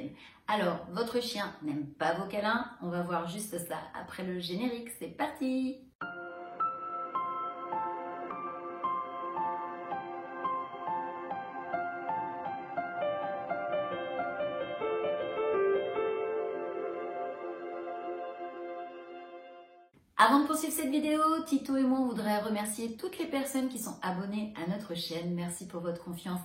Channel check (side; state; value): both; identical; correlation 1.00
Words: Alors, votre chien n'aime pas vos câlins? On va voir juste ça après le générique. C'est parti! Avant de poursuivre cette vidéo, Tito et moi on voudrait remercier toutes les personnes qui sont abonnées à notre chaîne. Merci pour votre confiance